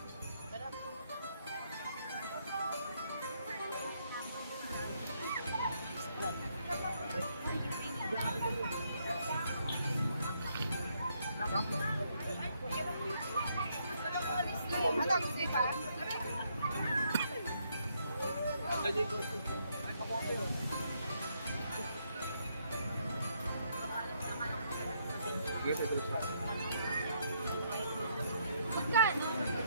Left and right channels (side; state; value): both; inverted; correlation -0.73